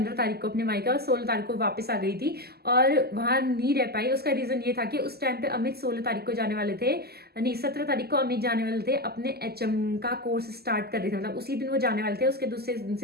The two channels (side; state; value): left; late; 0.46 ms